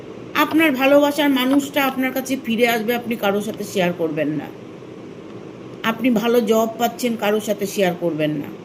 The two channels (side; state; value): both; identical; correlation 1.00